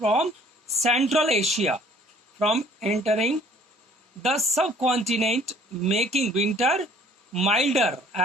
Central Asia from entering the subcontinent, making winter milder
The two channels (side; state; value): both; normal; correlation 0.56